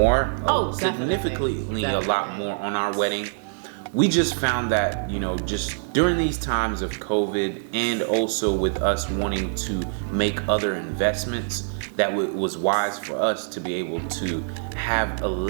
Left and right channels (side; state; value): left; silent; digital silence